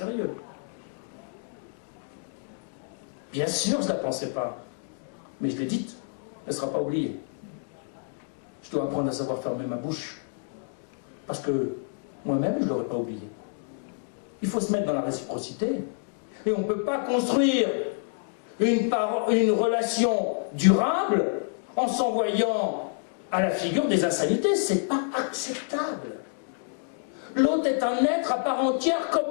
Bien sûr, je ne la pensais pas. Mais je l'ai dite. Elle ne sera pas oubliée. Je dois apprendre à savoir fermer ma bouche. Parce que moi-même, je ne l'aurais pas oublié. Il faut se mettre dans la réciprocité. Et on ne peut pas construire une relation durable en s'envoyant à la figure des insanités. C'est pas acceptable. L'autre est un être à part entière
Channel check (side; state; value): right; silent; digital silence